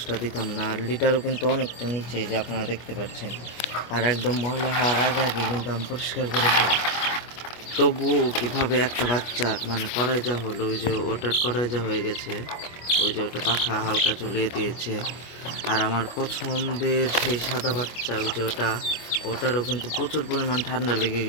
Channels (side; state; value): right; late; 25 ms